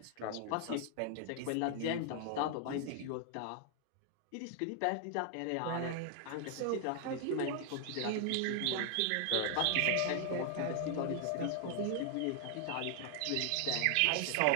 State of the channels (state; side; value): different; both; correlation 0.00